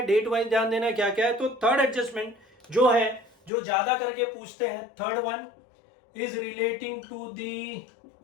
डेट वाइज ध्यान देना है, क्या क्या है। तो थर्ड एडजस्टमेंट जो है, जो ज्यादा करके पूछते हैं, third one is relating to the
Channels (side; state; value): right; drops out; at 3.5 s